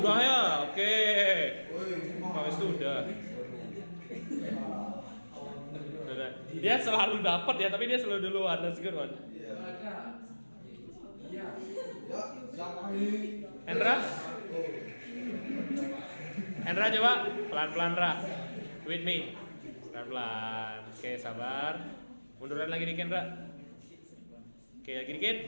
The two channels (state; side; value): inverted; both; correlation -1.00